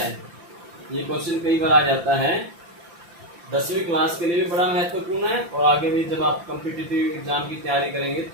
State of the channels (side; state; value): left; late; 5.9 ms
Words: ये क्वेश्चन कई बार आ जाता है। 10वीं क्लास के लिए भी बड़ा महत्वपूर्ण है, और आगे भी जब आप कॉम्पिटिटिव एग्जाम की तैयारी करेंगे